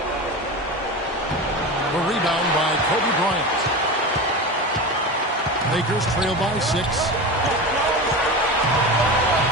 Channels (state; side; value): normal; both; correlation 0.26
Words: The rebound by Kobe Bryant. Lakers trail by 6.